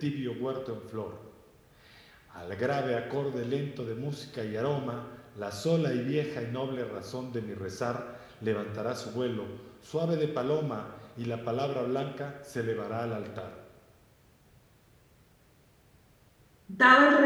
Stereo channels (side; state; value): both; identical; correlation 1.00